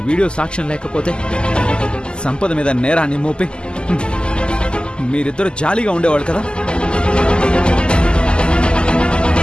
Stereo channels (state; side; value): late; right; 0.049 ms